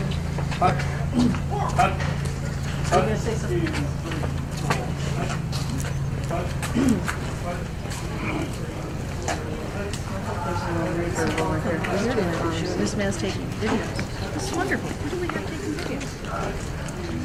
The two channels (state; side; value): identical; both; correlation 1.00